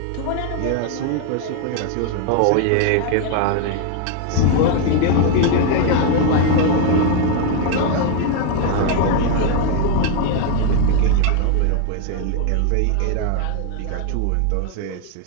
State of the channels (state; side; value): different; both; correlation 0.01